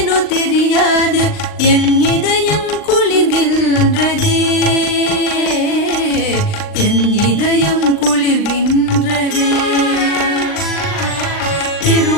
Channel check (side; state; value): right; late; 39 ms